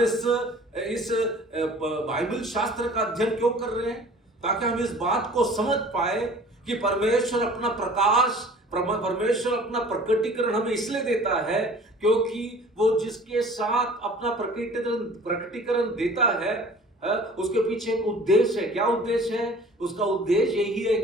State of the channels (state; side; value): normal; both; correlation 0.47